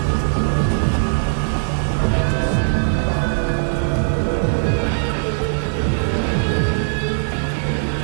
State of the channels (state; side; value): silent; left; 65 dB below the other